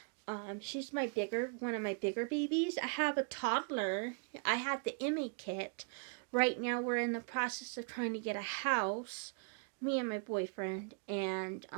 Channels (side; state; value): left; quieter; 36.8 dB